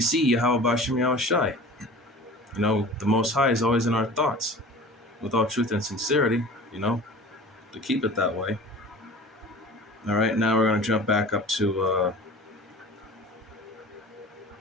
Yahweh Bashem Yahweh Shai. The Most High is always in our thoughts, with all truth and sincerity, to keep it that way. All right, now we're going to jump back up to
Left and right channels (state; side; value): normal; both; correlation 0.40